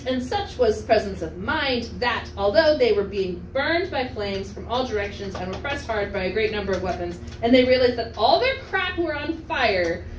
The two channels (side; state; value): both; identical; correlation 1.00